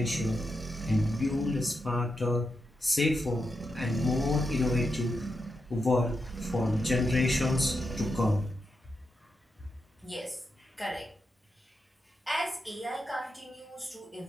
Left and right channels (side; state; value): both; normal; correlation 0.86